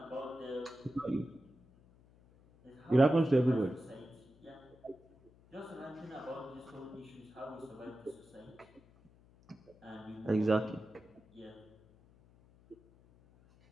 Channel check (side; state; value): left; noise; hum, 27 dB below the sound